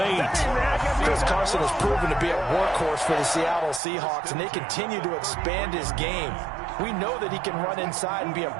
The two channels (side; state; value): left; drops out; at 3.8 s